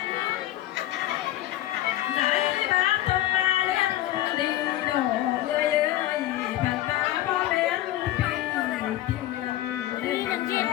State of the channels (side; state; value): right; quieter; 14.5 dB